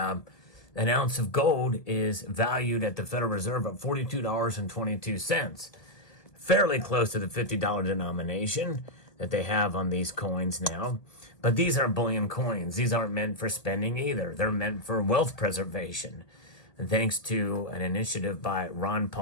ounce of gold is valued at the Federal Reserve at $42.22, fairly close to the $50 denomination that they have on these coins now. But these are bullion coins. These aren't meant for spending either. They're meant for wealth preservation. And thanks to an initiative by Ron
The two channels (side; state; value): right; late; 1.8 ms